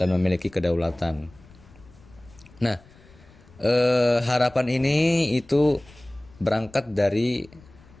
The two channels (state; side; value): noise; left; rumble, 25 dB below the sound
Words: memiliki kedaulatan. Nah, harapan ini itu berangkat dari